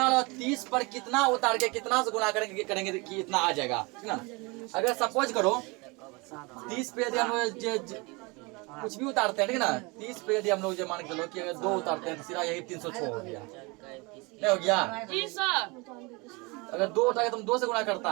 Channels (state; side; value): quieter; left; 26.9 dB